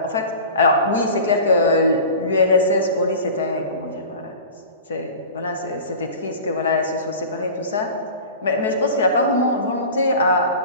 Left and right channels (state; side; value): inverted; both; correlation -0.37